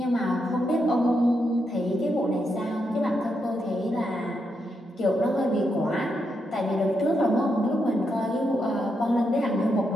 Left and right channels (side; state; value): both; normal; correlation 0.82